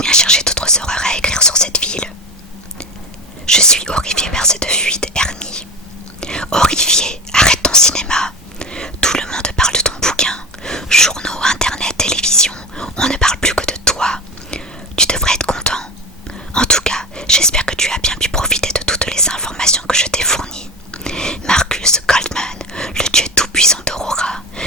viens chercher d'autres horreurs à écrire sur cette ville. » Je suis horrifié par cette fuite, Ernie. Horrifié, arrête ton cinéma. Tout le monde parle de ton bouquin. Journaux, internet, télévision, on ne parle plus que de toi. Tu devrais être content. En tout cas, j'espère que tu as bien pu profiter de toutes les informations que je t'ai fournies. Marcus Goldman, le dieu tout-puissant d'Aurora.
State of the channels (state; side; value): normal; both; correlation 0.24